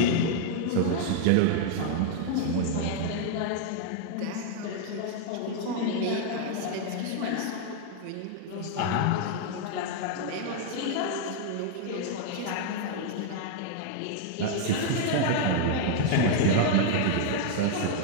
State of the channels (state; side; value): different; both; correlation 0.00